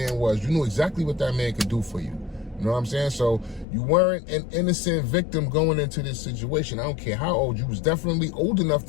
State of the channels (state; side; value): drops out; right; at 3.7 s